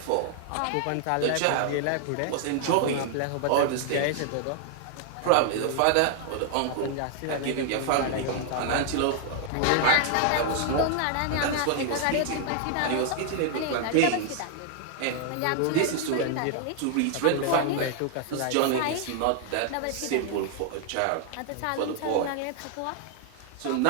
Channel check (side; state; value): both; different; correlation 0.00